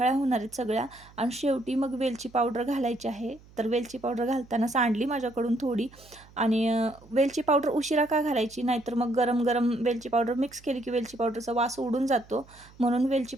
होणार आहेत सगळ्या. आणि शेवटी मग वेलची पावडर घालायची आहे. तर वेलची पावडर घालताना सांडली माझ्याकडून थोडी. आणि वेलची पावडर उशिरा का घालायची, नाहीतर मग गरम गरम वेलची पावडर मिक्स केली की वेलची पावडरचा वास उडून जातो, म्हणून वेलची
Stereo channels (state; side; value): noise; right; hum, 24 dB below the sound